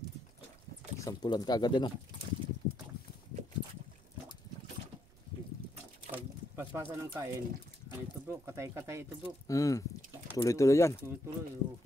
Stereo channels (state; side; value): noise; right; rumble, 27 dB below the sound